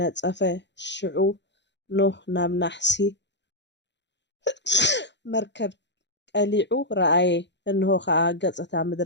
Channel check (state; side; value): late; right; 0.52 ms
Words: ሽዑ ኖህ ናብ ናሕሲ መርከብ ቀሊዑ ረኣየ እንሆ ከዓ ገፅታ